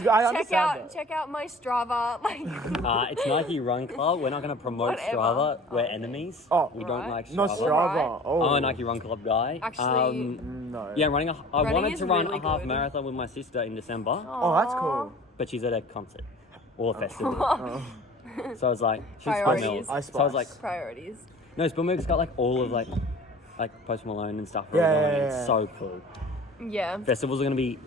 I understand that. check out my Strava. Like, It's Nike Run Club. We're not going to promote Whatever. Strava. We're Oh, enemies. Oh, we don't right. like Strava. Not Strava. Right. Oh. I'm a Nike Run Club guy. Actually, No. Yeah, I Running wanted is to run really a half good. marathon with my sister in December, Oh, that's cool. but she's at a concert or a festival. So I was like, she's Priorities. Spillmills. So I was like, priorities. no, Spillmills got like all of like Post Malone and stuff. Yeah, running. yeah, It's yeah. so cool. Yeah, Festivals are going to be.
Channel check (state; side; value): normal; both; correlation 0.44